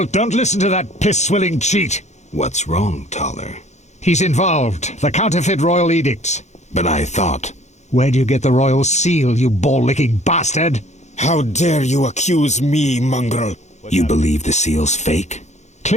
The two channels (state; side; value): late; right; 0.33 ms